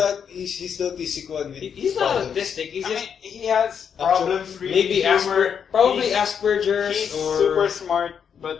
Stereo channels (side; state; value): right; quieter; 7.4 dB